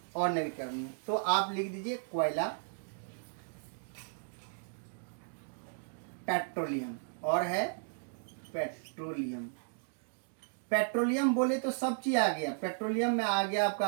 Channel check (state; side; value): silent; left; digital silence